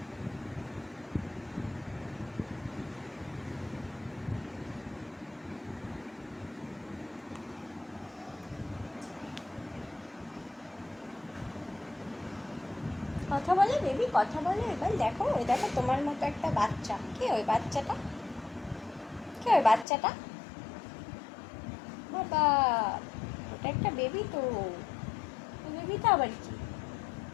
কথা বলে বেবি, কথা বলে। এবার দেখো, ওই দেখো তোমার মতো একটা বাচ্চা। কে ওই বাচ্চাটা? কে ওই বাচ্চাটা? বাবা, ওটা একটা বেবি তো। ওই বেবিটা আবার কি?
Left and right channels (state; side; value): drops out; right; at 19.9 s